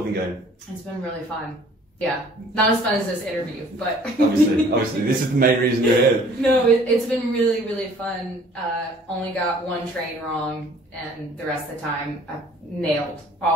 been going? It's been really fun. Yeah, not as fun as this interview, but obviously, this is the main reason you're here. No, it's been really fun. Only got one train wrong, and the rest of the time I nailed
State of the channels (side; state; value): both; normal; correlation 0.54